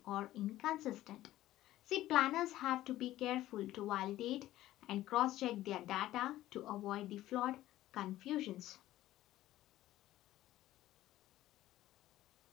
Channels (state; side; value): quieter; right; 14.8 dB